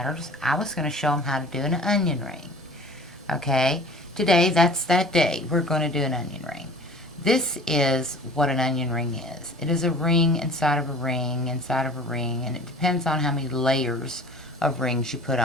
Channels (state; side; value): normal; both; correlation 0.45